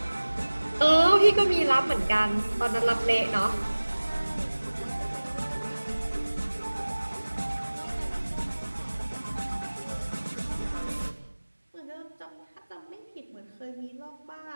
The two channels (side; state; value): both; inverted; correlation -1.00